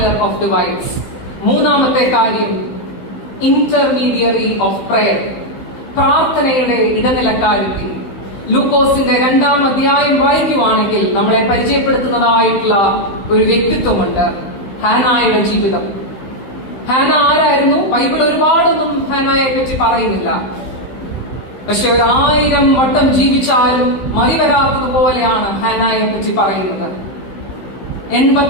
of divides. മൂന്നാമത്തെ കാര്യം, ഇന്റർമീഡിയറി ഓഫ് പ്രയർ, പ്രാർത്ഥനയുടെ ഇടനിലക്കാരിക്ക്. ലൂക്കോസിന്റെ 2-ാം അധ്യായം വായിക്കുവാണെങ്കിൽ നമ്മളെ പരിചയപ്പെടുത്തുന്നതായിട്ടുള്ള ഒരു വ്യക്തിത്വമുണ്ട്, ഹാനായുടെ ജീവിതം. ഹാന ആരായിരുന്നു? ബൈബിൾ ഒരുപാടൊന്നും ഹാനയെ പറ്റി പറയുന്നില്ല. പക്ഷെ 1000 വട്ടം ജീവിച്ചാലും മറിവരാത്തതുപോലെയാണ് ഹാനയെ പറ്റി പറയുന്നത്.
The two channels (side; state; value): right; late; 16 ms